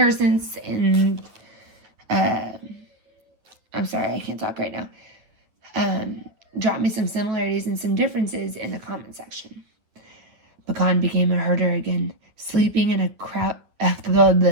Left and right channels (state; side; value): late; left; 9.3 ms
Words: and I'm sorry, I can't talk right now. Drop me some similarities and some differences in the comment section. Pecan became a herder again, sleeping in a cowshed